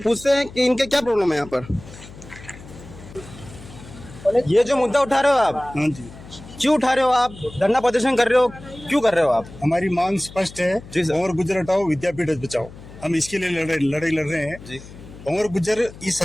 हैं कि इनके क्या प्रॉब्लम है यहाँ पर। ये जो मुद्दा उठा रहे हो आप, हाँ जी, क्यों उठा रहे हो आप? धरना प्रदर्शन कर रहे हो, क्यों कर रहे हो आप? हमारी मांग स्पष्ट है जी सर। भंवर गुजर हटाओ विद्यापीठ बचाओ। हम इसके लिए लड़ाई लड़ रहे हैं जी। भंवर गुजर इस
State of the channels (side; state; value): left; noise; hum, 17 dB below the sound